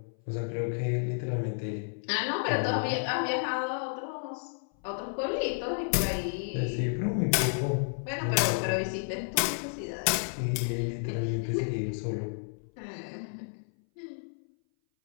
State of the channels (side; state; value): right; silent; 57 dB below the other